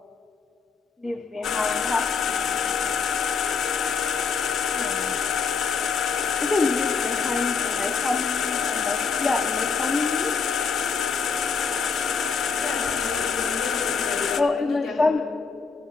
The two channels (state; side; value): quieter; right; 5.6 dB